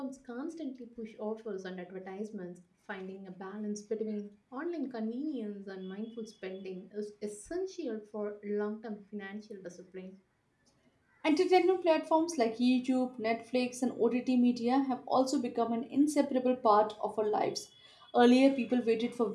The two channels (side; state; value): both; identical; correlation 1.00